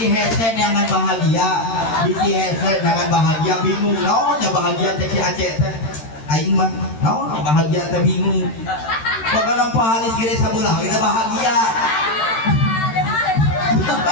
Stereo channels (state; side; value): late; right; 13 ms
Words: headset jangan bahagia bingung ya bahagia teh si Aceh teh aing mah bahagia teh bingung pokoknya pahalis gede sabelah kita bahagia. Kita